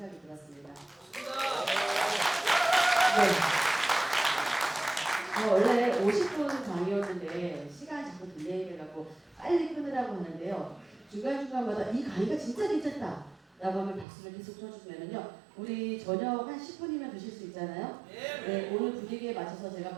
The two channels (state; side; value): drops out; left; at 14.1 s